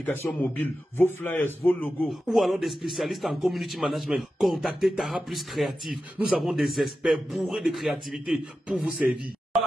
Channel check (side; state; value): both; normal; correlation 0.92